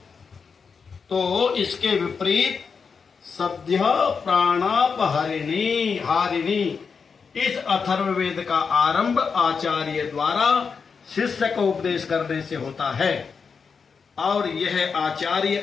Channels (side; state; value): right; quieter; 5.6 dB